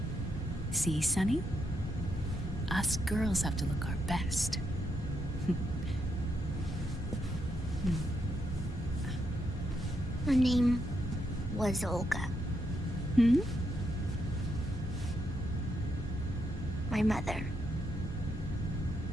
See, Sonny? Us girls have to look our best. Her name was Olga. Hmm? My mother.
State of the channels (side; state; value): both; normal; correlation 0.80